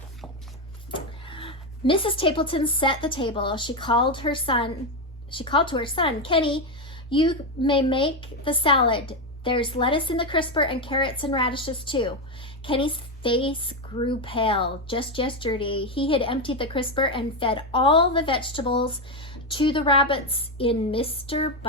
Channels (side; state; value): both; normal; correlation 0.09